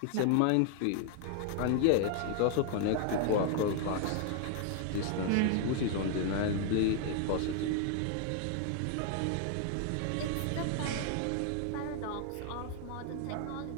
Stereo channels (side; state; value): both; different; correlation 0.00